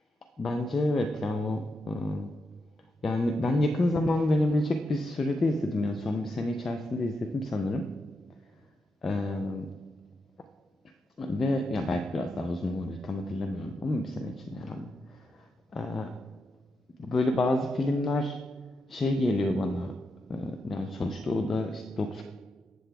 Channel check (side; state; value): both; normal; correlation 0.85